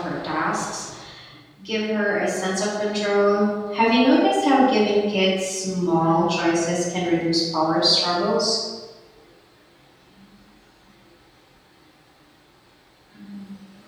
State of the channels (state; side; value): identical; both; correlation 1.00